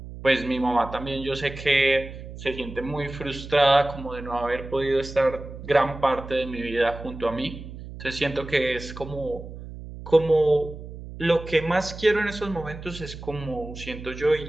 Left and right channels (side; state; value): right; noise; hum, 12 dB below the sound